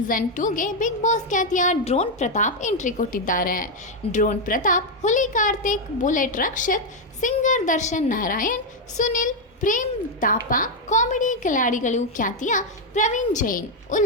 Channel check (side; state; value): both; normal; correlation 0.02